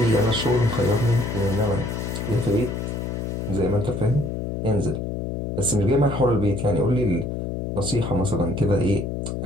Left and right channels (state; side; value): noise; left; hum, 4 dB below the sound